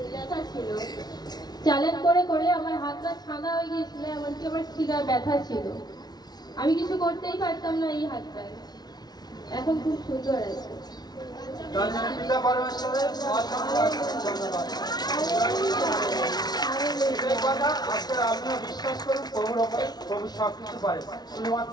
ব্যথা ছিল, চ্যালেঞ্জ করে করে আমার হাতটা ছাদা হয়ে গিয়েছিল, এমনকি আমার শিরা ব্যথা ছিল, আমি কিছু করতেই পারতাম না এই হাতটায়। এখন খুব সুন্দর আছে। পিতা পরমেশ্বরের ধন্যবাদ। আজকে আপনিও বিশ্বাস করুন প্রভুর ওপরে, প্রভু সবকিছু পারে,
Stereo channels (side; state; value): right; late; 0.19 ms